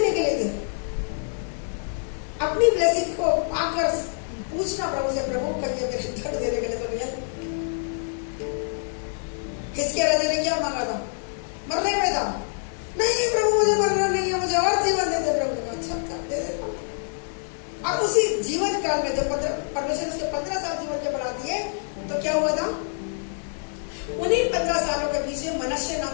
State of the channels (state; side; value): silent; right; digital silence